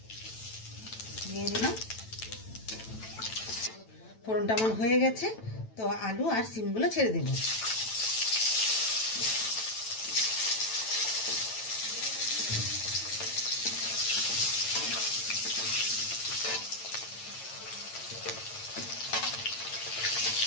দিয়ে দিলাম। ফোড়নটা আমার হয়ে গেছে। তো আলু আর শিমগুলো ছেড়ে দেব।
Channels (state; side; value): late; right; 9.1 ms